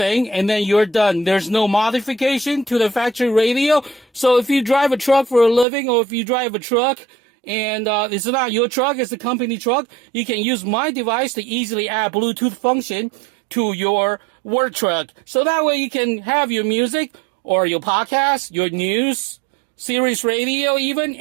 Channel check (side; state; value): left; drops out; at 5.7 s